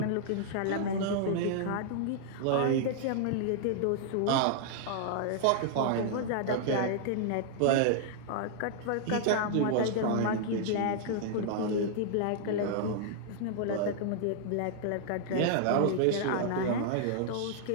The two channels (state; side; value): different; both; correlation -0.01